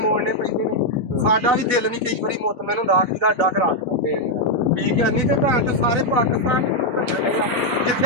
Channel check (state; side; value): late; left; 4.1 ms